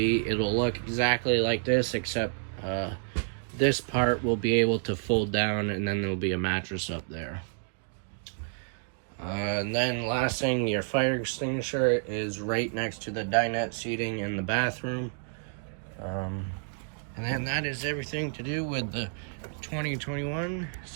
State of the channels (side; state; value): left; silent; digital silence